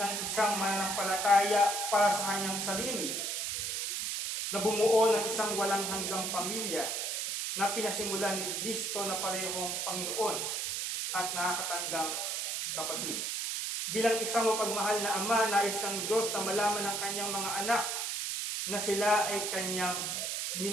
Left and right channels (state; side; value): noise; right; hiss, 1 dB below the sound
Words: isang mananampalataya para sa kanyang sarili, na bumuo ng isang walang hanggang pamilya na pinasimulan ni Kristo na parehong Panginoon at nakakatandang kapatid. Bilang isang mapagmahal na Ama, nais ng Diyos na malaman ng kanyang mga anak na sila ay kanyang